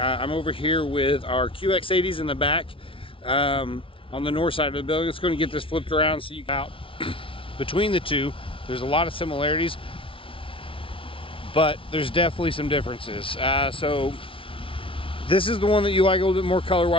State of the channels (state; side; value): late; right; 0.25 ms